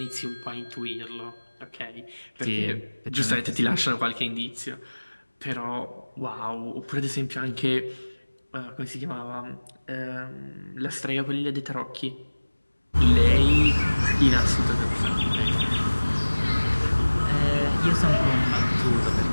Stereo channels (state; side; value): inverted; both; correlation -1.00